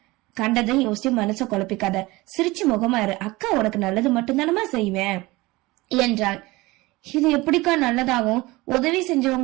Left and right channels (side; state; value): left; quieter; 21.2 dB